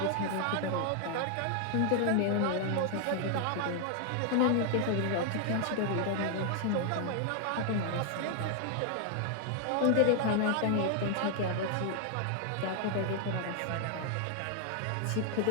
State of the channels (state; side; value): different; both; correlation 0.00